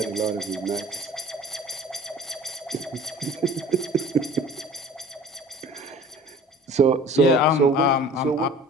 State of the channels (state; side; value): normal; both; correlation 0.46